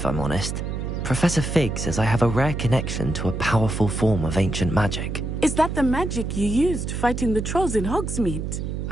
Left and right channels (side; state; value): right; noise; hum, 4 dB below the sound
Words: I'm honest. Professor Fig says I have a rare connection to a powerful form of ancient magic. Is that the magic you used fighting the trolls in Hogsmeade?